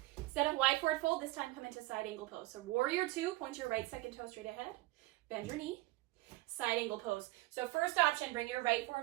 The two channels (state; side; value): quieter; left; 19.1 dB